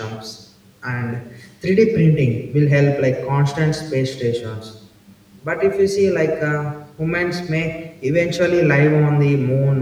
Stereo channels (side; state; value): both; identical; correlation 1.00